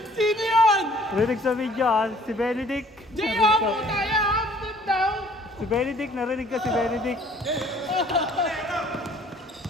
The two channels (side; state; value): both; normal; correlation 0.56